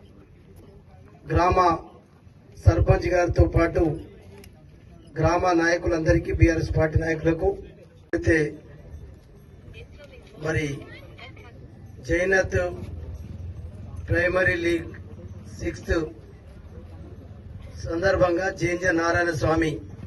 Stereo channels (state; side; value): identical; both; correlation 1.00